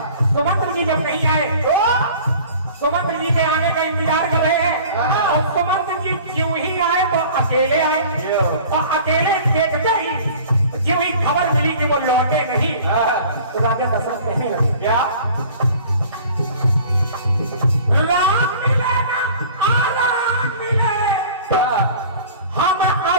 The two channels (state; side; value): inverted; both; correlation -0.45